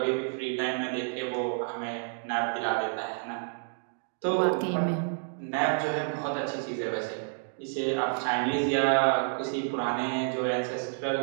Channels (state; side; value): silent; left; digital silence